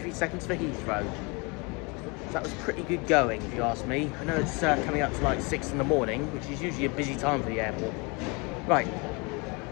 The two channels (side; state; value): right; quieter; 29.6 dB